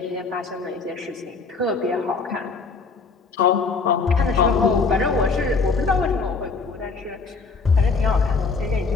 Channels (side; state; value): right; quieter; 4.5 dB